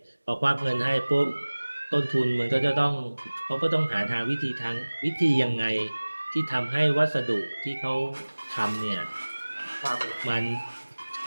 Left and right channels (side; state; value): both; inverted; correlation -1.00